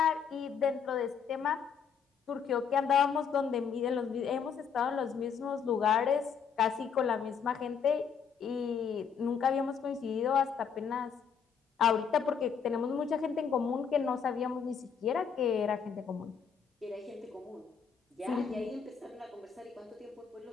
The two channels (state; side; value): quieter; right; 6.9 dB